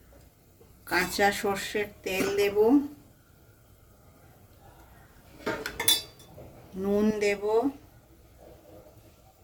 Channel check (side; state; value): both; identical; correlation 1.00